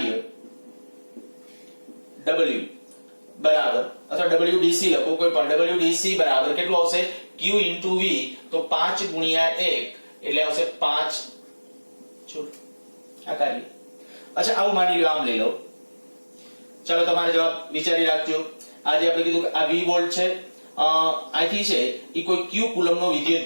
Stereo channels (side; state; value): both; inverted; correlation -1.00